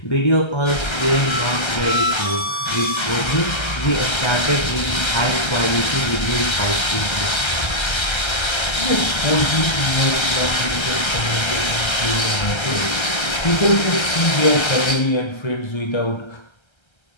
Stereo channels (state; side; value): late; right; 1.3 ms